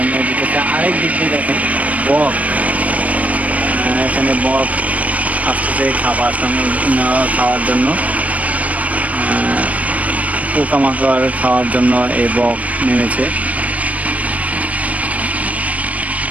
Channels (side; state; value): left; late; 0.069 ms